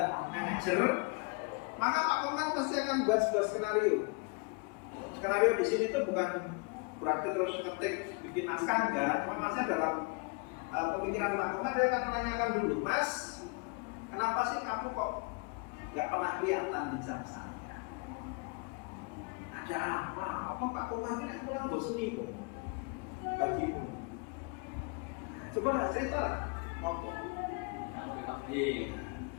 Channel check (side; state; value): right; quieter; 32.0 dB